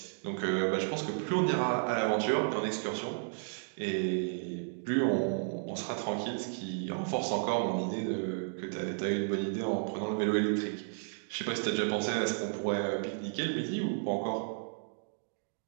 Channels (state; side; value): silent; left; digital silence